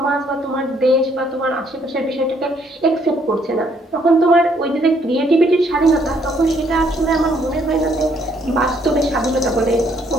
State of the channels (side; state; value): both; normal; correlation 0.68